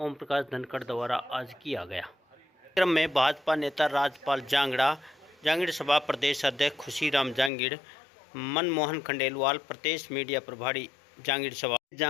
प्रकाश धनखड़ द्वारा आज किया गया। कार्यक्रम में भाजपा नेता राजपाल जांगड़ा, जांगीड़ सभा प्रदेश अध्यक्ष खुशीराम जांगीड़, मनमोहन खंडेलवाल, प्रदेश मीडिया प्रभारी जांगीड़ सभा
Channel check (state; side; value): drops out; right; at 7.5 s